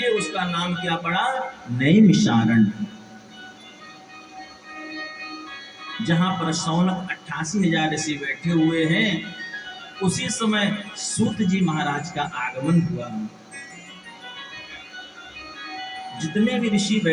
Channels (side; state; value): both; identical; correlation 1.00